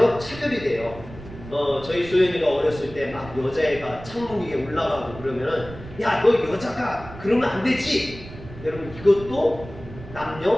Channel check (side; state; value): right; noise; rumble, 15 dB below the sound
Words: 차별이 돼요. 저희 소연이가 어렸을 때 막 여자애가 창문 위에 올라가고 그러면은, 야, 너 여자가 그러면 안 되지! 여러분, 이것도